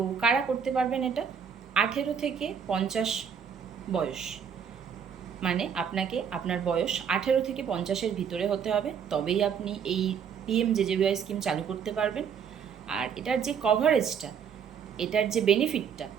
কারা করতে পারবেন এটা? 18 থেকে 50 বয়স, মানে আপনাকে আপনার বয়স 18 থেকে 50-এর ভিতরে হতে হবে, তবেই আপনি এই পিএমজেজেবিওয়াই স্কিম চালু করতে পারবেন। আর এটার যে কভারেজটা, এটার যে বেনিফিটটা,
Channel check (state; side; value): quieter; left; 7.3 dB